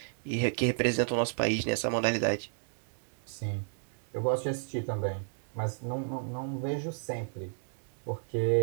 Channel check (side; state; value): left; silent; digital silence